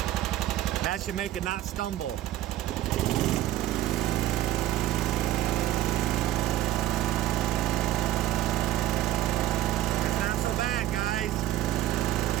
That should make it not stumble.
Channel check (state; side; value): quieter; left; 14.0 dB